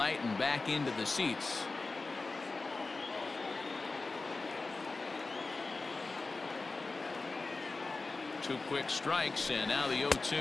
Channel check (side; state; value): right; quieter; 3.7 dB